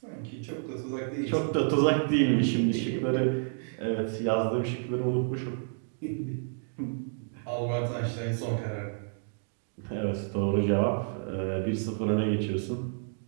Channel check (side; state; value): left; silent; digital silence